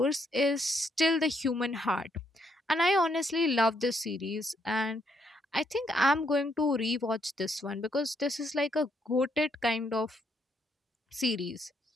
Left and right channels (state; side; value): normal; both; correlation 0.74